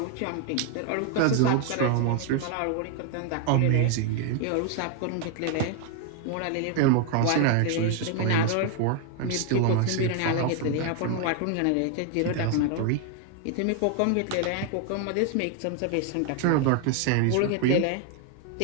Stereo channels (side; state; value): both; different; correlation 0.01